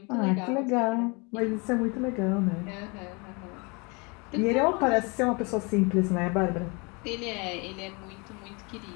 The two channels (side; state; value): right; quieter; 29.9 dB